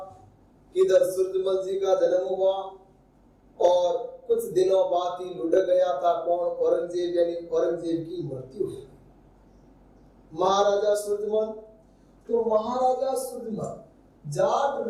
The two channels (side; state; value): both; identical; correlation 1.00